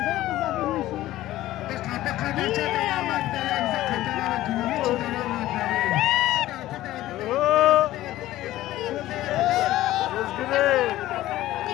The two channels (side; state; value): right; quieter; 15.3 dB